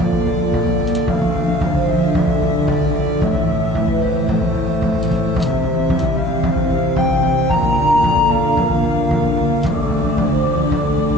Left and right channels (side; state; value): both; normal; correlation 0.49